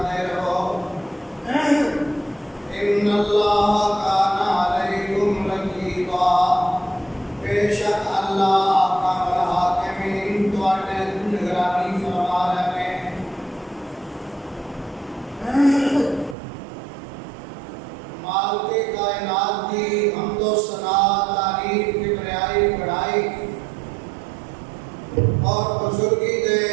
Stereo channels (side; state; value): left; drops out; at 16.4 s